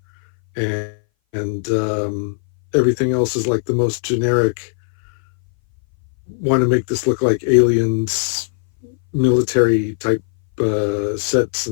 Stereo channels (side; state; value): right; silent; 61 dB below the other